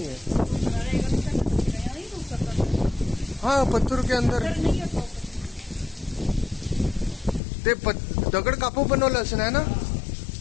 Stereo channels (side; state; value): right; drops out; at 7.4 s